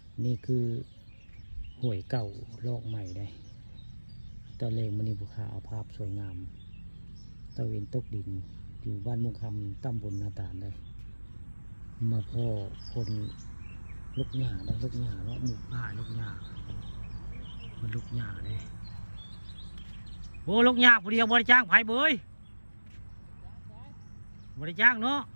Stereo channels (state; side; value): inverted; both; correlation -1.00